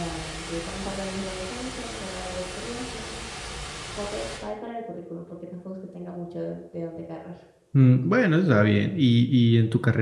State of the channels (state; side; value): identical; both; correlation 1.00